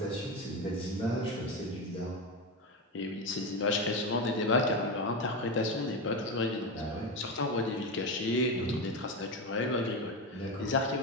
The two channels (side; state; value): both; normal; correlation 0.16